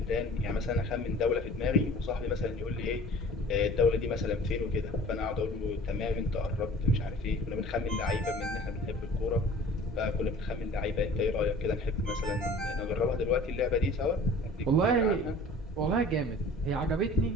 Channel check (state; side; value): normal; both; correlation 0.46